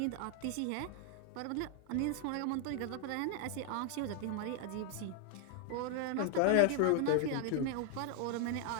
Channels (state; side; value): different; both; correlation 0.00